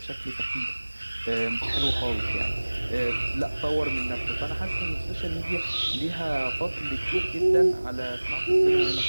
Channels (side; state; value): both; inverted; correlation -1.00